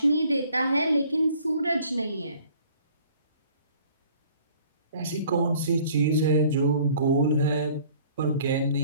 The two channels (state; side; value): inverted; both; correlation -0.55